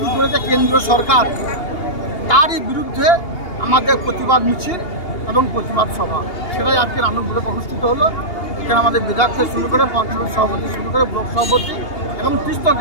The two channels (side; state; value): right; late; 2.8 ms